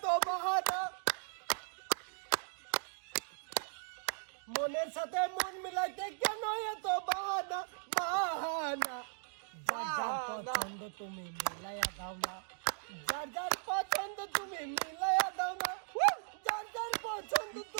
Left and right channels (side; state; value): left; silent; digital silence